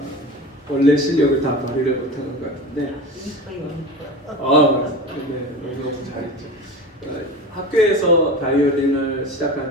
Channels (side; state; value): both; normal; correlation 0.31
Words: 원래 실력을 다 발휘를 못하는 것 같은데 네, 너무 잘했죠. 학교에서 바이올린을 시작한